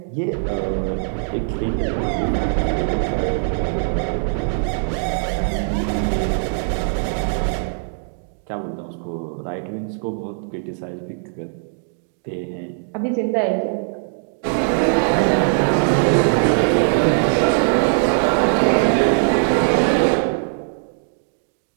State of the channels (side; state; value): left; silent; digital silence